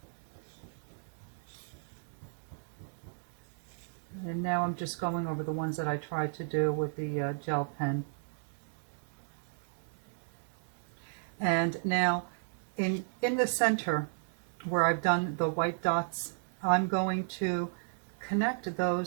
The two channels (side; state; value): left; silent; digital silence